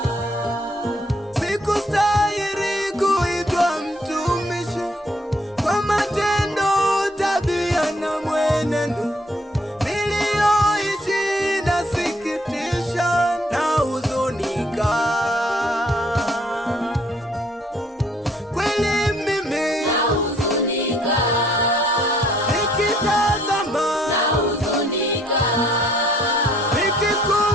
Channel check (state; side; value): normal; both; correlation 0.65